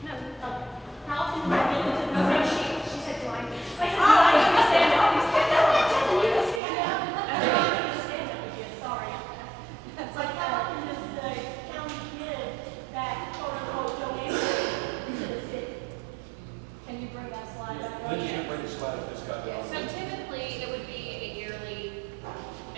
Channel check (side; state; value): left; drops out; at 6.6 s